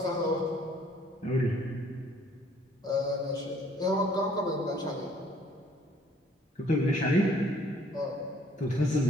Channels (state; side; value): normal; both; correlation 0.60